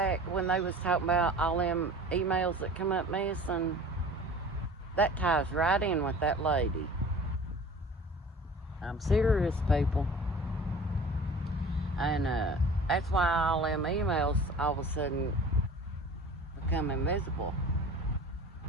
when they was talking about all them emails that come up missing? That ties right in with that lady. I'm serious, people. And that's why all them emails all of a sudden become invisible.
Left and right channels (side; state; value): both; normal; correlation 0.42